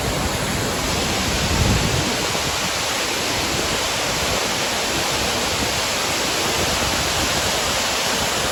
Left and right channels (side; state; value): both; identical; correlation 1.00